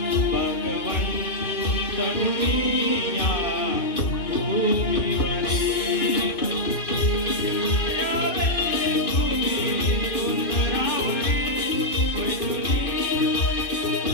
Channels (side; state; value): right; late; 2.5 ms